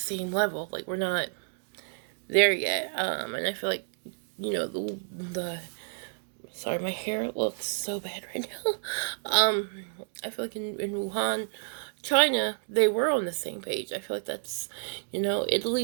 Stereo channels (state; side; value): silent; left; digital silence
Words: level. Like, we're not there yet. And I feel like, sorry, my hair looks so bad right now. I feel like in Wuhan, China, they were on the same page. I feel like that's,